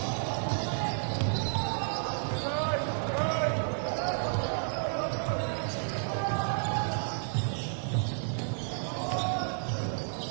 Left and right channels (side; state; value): left; silent; digital silence